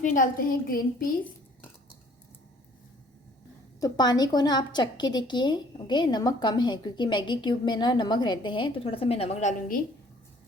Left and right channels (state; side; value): normal; both; correlation 0.57